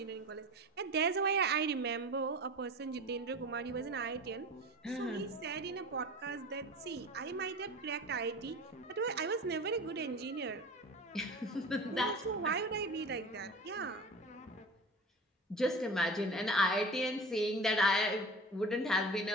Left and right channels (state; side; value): normal; both; correlation 0.35